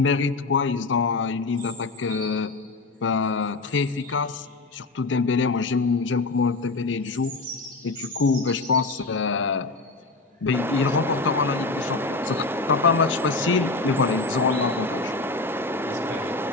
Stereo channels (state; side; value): quieter; right; 3.5 dB